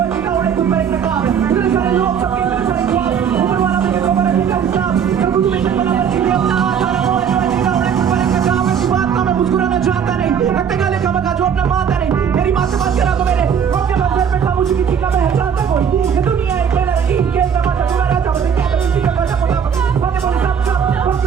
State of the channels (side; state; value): left; quieter; 7.6 dB